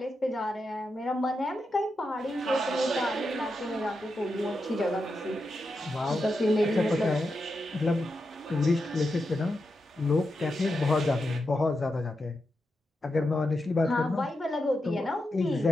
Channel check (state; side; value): normal; both; correlation 0.87